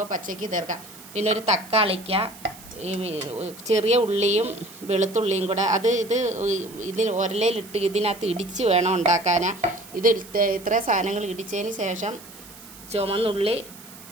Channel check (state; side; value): noise; right; hiss, 19 dB below the sound